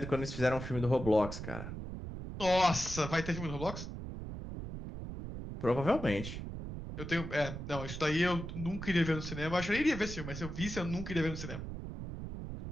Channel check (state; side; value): noise; right; rumble, 8 dB below the sound